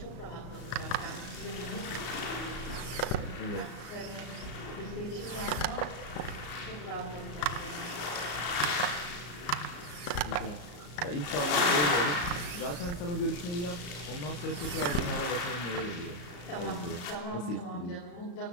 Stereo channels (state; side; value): late; right; 34 ms